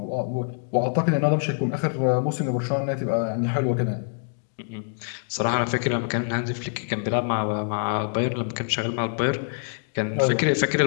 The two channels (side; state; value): right; silent; digital silence